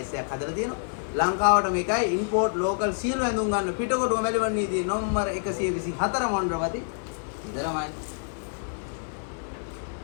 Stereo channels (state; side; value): silent; right; digital silence